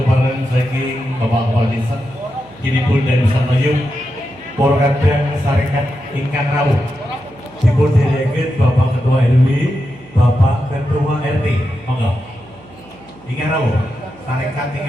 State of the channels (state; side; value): noise; right; hum, 25 dB below the sound